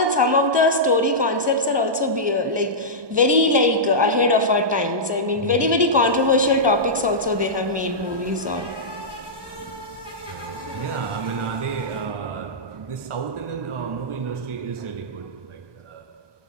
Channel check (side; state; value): left; late; 1.2 ms